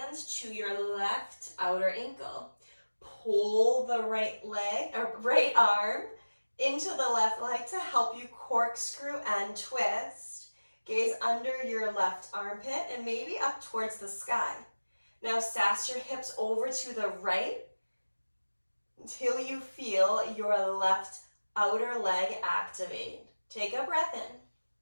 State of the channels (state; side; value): inverted; both; correlation -1.00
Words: to your left outer ankle. Pull the right leg or right arm into the left leg to help you corkscrew and twist. Gaze under your left armpit and maybe up towards the sky. Now sass your hips over to the right until you feel your left outer leg activate. Take a breath in.